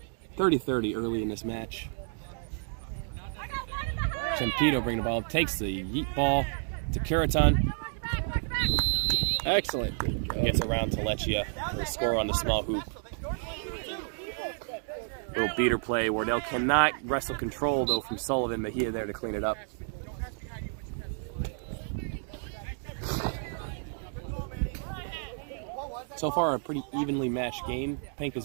30-30 early in this match. Champito bringing the ball, takes the yeet ball to Curaton. Excellent. Gets around Taleccia for a score on the small hoop. Little beater play. Wardell cannot wrestle control though from Sullivan, but he is there to clean it up. So far, a pretty evenly matched game. Pink has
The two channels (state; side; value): silent; left; 57 dB below the other